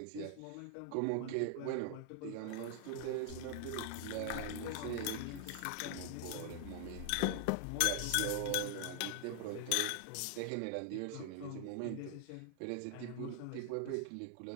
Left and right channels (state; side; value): different; both; correlation 0.00